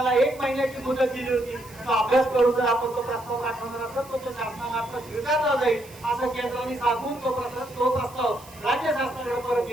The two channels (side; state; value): right; noise; hiss, 21 dB below the sound